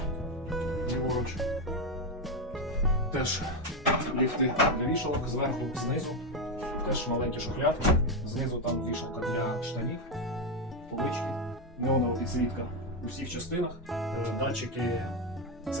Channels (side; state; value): both; normal; correlation 0.08